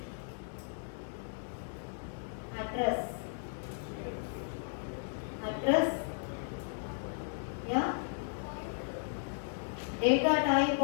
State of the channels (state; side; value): silent; right; digital silence